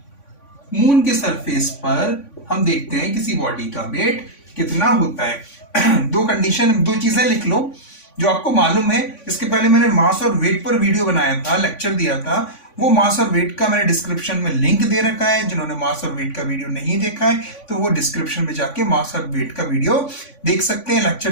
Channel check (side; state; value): right; late; 3.5 ms